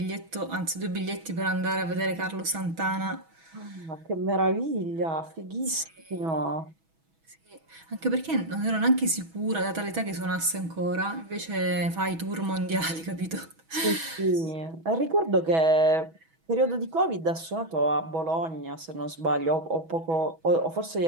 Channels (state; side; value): late; left; 6.2 ms